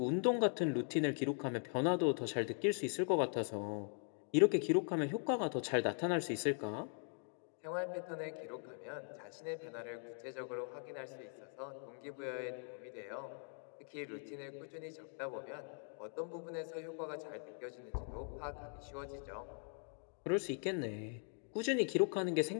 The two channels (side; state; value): right; silent; 51 dB below the other